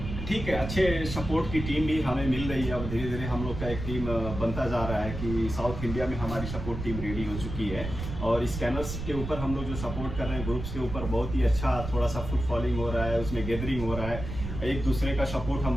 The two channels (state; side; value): noise; right; rumble, 7 dB below the sound